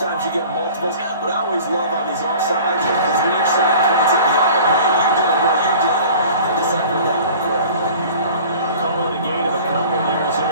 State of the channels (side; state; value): both; inverted; correlation -0.45